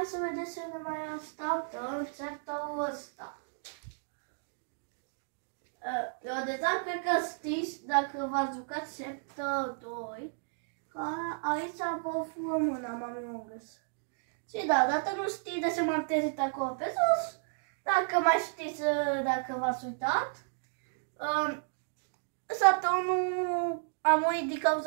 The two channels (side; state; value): left; silent; digital silence